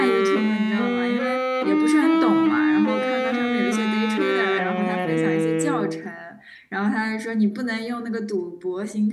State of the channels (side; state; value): both; identical; correlation 1.00